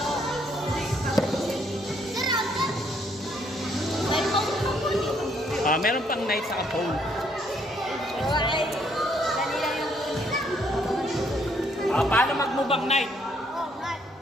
Meron pang night sa phone. Paano mag-move night?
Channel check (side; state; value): both; normal; correlation 0.69